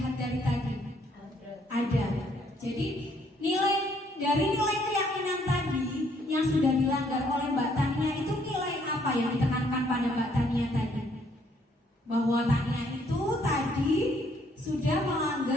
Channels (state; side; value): normal; both; correlation 0.67